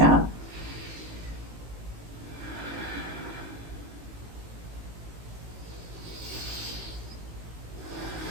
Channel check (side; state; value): left; late; 18 ms